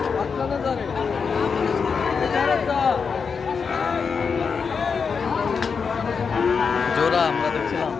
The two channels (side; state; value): right; quieter; 5.7 dB